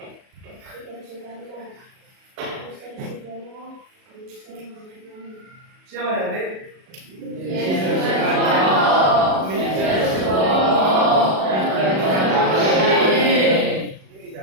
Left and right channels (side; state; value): left; late; 37 ms